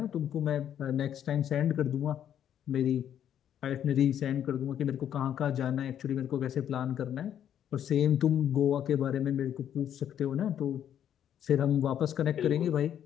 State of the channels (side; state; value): right; quieter; 9.9 dB